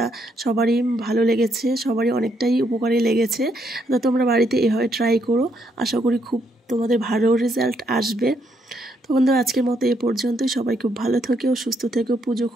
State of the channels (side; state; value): both; normal; correlation 0.75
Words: সবারই ভালো লেগেছে, সবারই অনেকটাই উপকারী লেগেছে। তো তোমরা বাড়িতে এভাবে ট্রাই করো, আশা করি খুব তোমাদের ভালো রেজাল্ট আসবে। তো বন্ধুরা, আজকের মতো এ পর্যন্তই। সবাই খুব ভালো থেকো, সুস্থ থেকো, পুজো